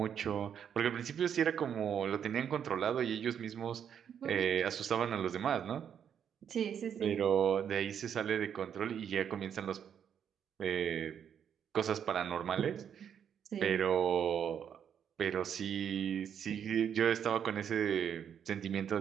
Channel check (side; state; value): left; quieter; 8.4 dB